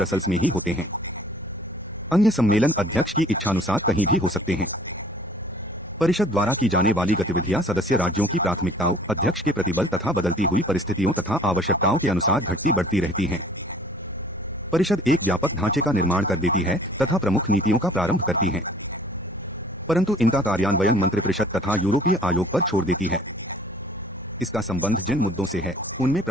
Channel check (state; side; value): normal; both; correlation 0.53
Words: में ही होते हैं। अन्य सम्मेलन अध्यक्ष की इच्छानुसार कहीं भी हो सकते हैं। परिषद द्वारा की जाने वाली गतिविधियां सदस्य राज्यों की प्राथमिकताओं, अध्यक्ष के प्रतिबल तथा बदलती हुई परिस्थितियों तथा आवश्यकताओं के अनुसार घटती बढ़ती रहती हैं। परिषद एक व्यापक ढांचे का निर्माण कर देती है तथा प्रमुख नीतियों का प्रारंभ करती है, परंतु इनका कार्यान्वयन मंत्रिपरिषद तथा यूरोपीय आयोग पर छोड़ देती है। इसका संबंध जिन मुद्दों से है उनमें